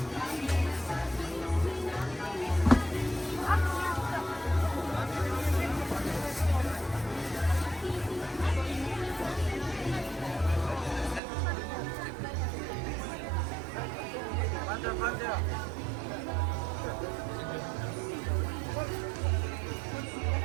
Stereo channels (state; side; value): drops out; left; at 11.2 s